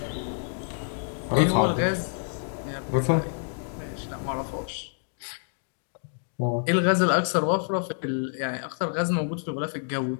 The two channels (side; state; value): right; silent; digital silence